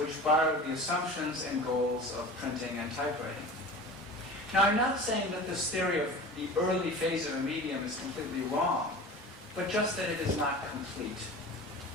borrowed the assumptions and goals of printing and typewriting. Now, I'm not saying that this theory of the early phase of a medium is completely wrong, but just that it is not complete.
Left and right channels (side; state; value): both; normal; correlation 0.36